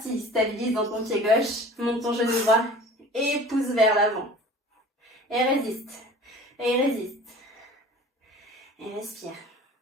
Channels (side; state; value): both; normal; correlation 0.44